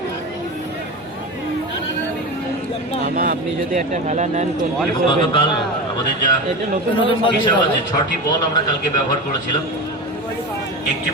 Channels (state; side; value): normal; both; correlation 0.24